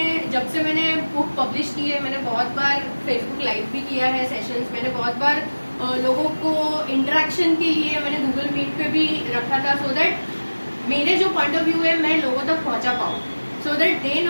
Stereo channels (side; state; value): both; inverted; correlation -1.00